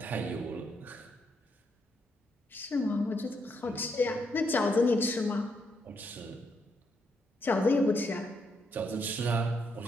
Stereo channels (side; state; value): both; normal; correlation 0.77